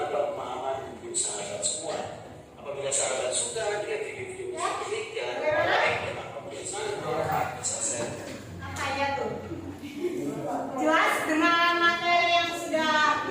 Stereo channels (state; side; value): identical; both; correlation 1.00